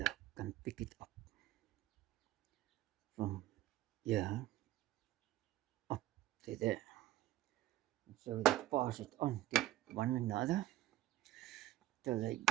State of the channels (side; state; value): left; quieter; 14.6 dB